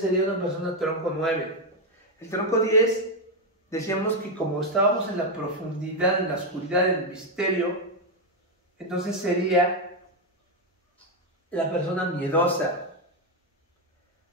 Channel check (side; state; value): both; normal; correlation 0.04